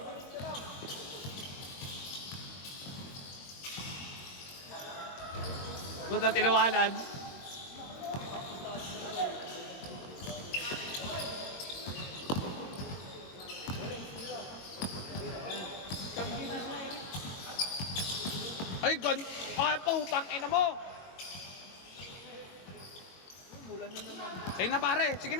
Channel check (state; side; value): late; right; 22 ms